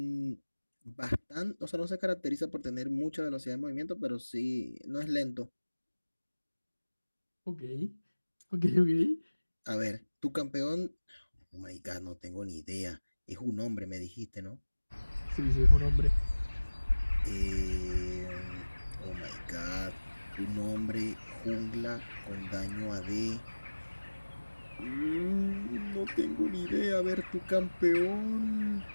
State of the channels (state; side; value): inverted; both; correlation -1.00